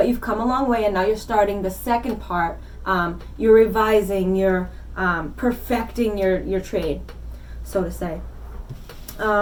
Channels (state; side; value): identical; both; correlation 1.00